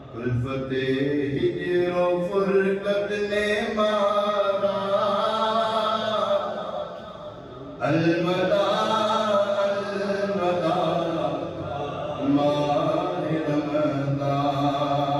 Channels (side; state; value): both; identical; correlation 1.00